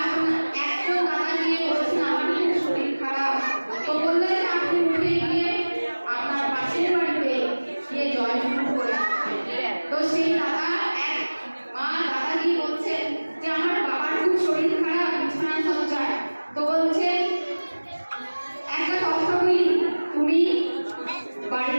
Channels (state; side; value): inverted; both; correlation -1.00